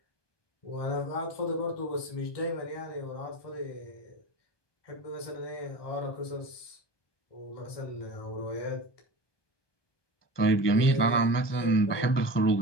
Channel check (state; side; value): late; right; 1.2 ms